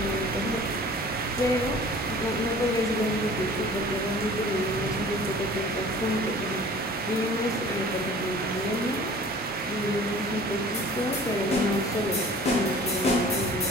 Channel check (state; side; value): normal; both; correlation 0.47